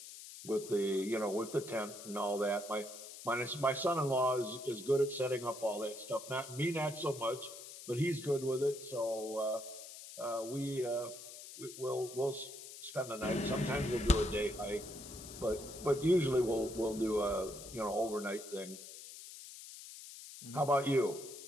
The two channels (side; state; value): left; noise; hiss, 13 dB below the sound